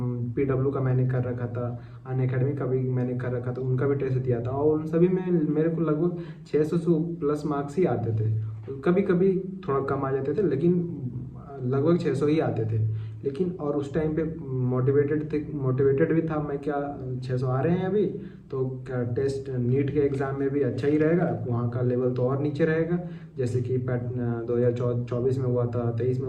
पीडब्ल्यू का मैंने कर रखा था, अनअकैडमी का भी मैंने कर रखा था, उनका भी टेस्ट दिया था, और उन सभी में मेरे को लगभग 600 से प्लस मार्क्स ही आते थे। कभी कभी थोड़ा कम आ जाते थे, लेकिन लगभग 600 ही आते थे। लेकिन और उस टाइम पे मोटिवेटेड भी था मैं, क्या 600 आ रहे हैं अभी, तो क्या टेस्ट नीट के एग्ज़ाम में भी अच्छा ही रहेगा, वहाँ का लेवल तो और नीचे रहेगा, जैसे कि 2024 में हुआ था, 23 में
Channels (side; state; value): both; identical; correlation 1.00